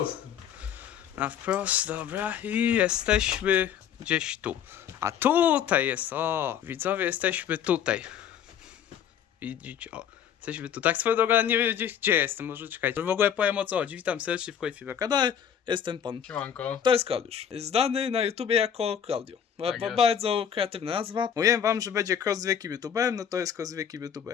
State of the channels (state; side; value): quieter; right; 8.8 dB